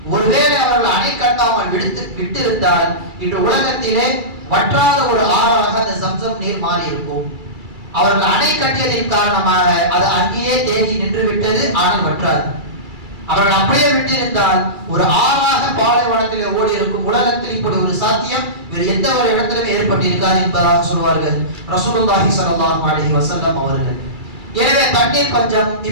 ஒருவேளை அவர்கள் அணை கட்டாமல் விட்டிருந்தால் இன்று உலகத்திலே வற்றாத ஒரு ஆறாக அந்த சம்சம் நீர் மாறி இருக்கும். அவர்கள் அணை கட்டியதின் காரணமாக அது அங்கேயே தேங்கி நின்று விட்டது, ஆனால் வற்றாது. அவர்கள் அப்படியே விட்டிருந்தால் ஒரு ஆறாக பாலைவனத்தில் ஓடி இருக்கும். உலகத்தில் இப்படி ஒரு சாத்தியம் வேறு எந்த ஒரு இடத்திலும் ஏற்பட்டிருக்காது என்பதாக சொல்வார்கள் ரசூலுல்லாஹி ஸல்லல்லாஹு அலைஹி வஸல்லம் அவர்கள். எனவே தண்ணீர் பஞ்சம்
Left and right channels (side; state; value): left; late; 2.3 ms